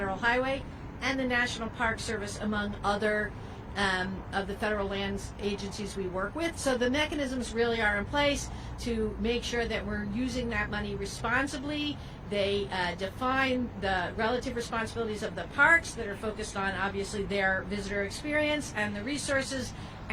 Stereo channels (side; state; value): both; identical; correlation 1.00